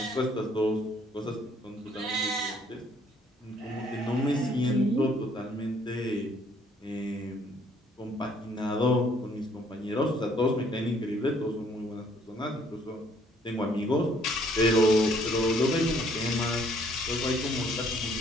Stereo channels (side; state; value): both; normal; correlation 0.63